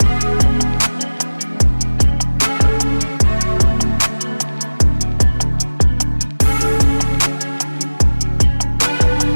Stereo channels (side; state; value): both; inverted; correlation -1.00